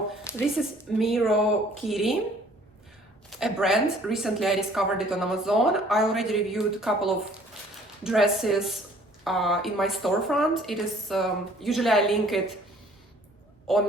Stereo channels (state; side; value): normal; both; correlation 0.56